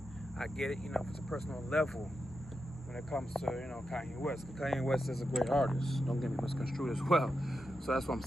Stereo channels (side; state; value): both; normal; correlation 0.88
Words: I get it, you know, if it's a personal level when it comes to, you know, Kanye West. Because Kanye West is a great artist. Don't get me misconstrued as well. So that's what I'm